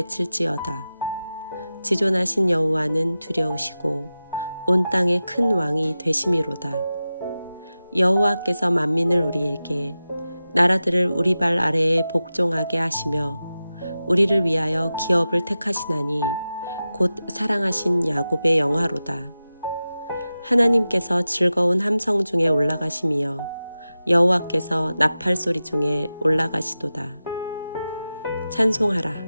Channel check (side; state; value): both; inverted; correlation -0.94